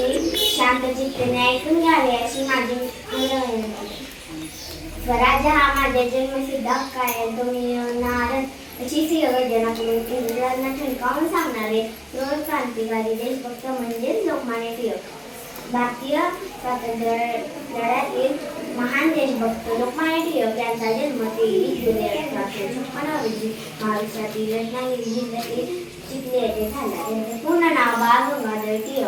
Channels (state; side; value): identical; both; correlation 1.00